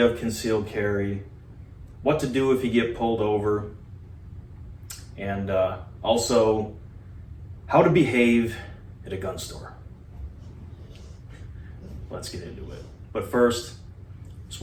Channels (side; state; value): both; identical; correlation 1.00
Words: concealed carry, what to do if you get pulled over, and also how to behave at a gun store. Let's get into it. But first, just